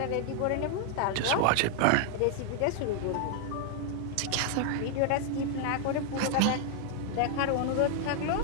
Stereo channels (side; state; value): both; different; correlation 0.00